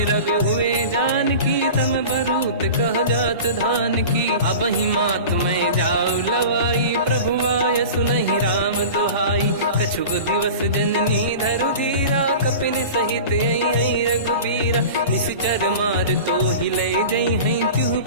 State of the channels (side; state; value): both; inverted; correlation -0.35